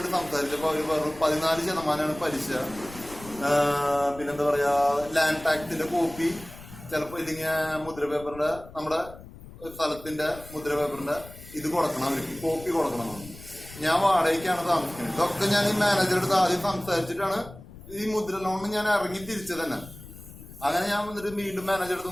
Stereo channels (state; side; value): noise; left; rumble, 17 dB below the sound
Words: സംസാരിച്ചപ്പോ അവര് പറഞ്ഞു 14% പലിശ, പിന്നെന്താ പറയാ ലാൻഡ് ടാക്സിന്റെ കോപ്പി, ചിലപ്പോ ഇല്ലെങ്കിൽ മുദ്ര പേപ്പറിന്റെ നമ്മുടെ സ്ഥലത്തിന്റെ മുദ്ര പേപ്പറിന്റെ ഇത് കൊടുക്കണം, അവർക്ക് കോപ്പി കൊടുക്കണം. ഞാൻ വാടകയ്ക്കാണ് താമസിക്കുന്നത്. ഇതൊക്കെ ഞാൻ ഈ മാനേജറുടെ അടുത്ത് ആദ്യം സംസാരിച്ചിട്ടാണ് ഈ മുദ്ര ലോണിന് ഞാൻ ഇറങ്ങി തിരിച്ചത് തന്നെ. അങ്ങനെ ഞാൻ വന്നിട്ട് വീണ്ടും